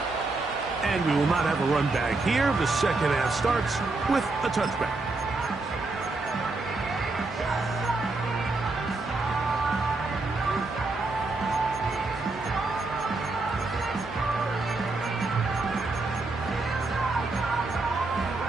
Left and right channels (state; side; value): quieter; left; 3.4 dB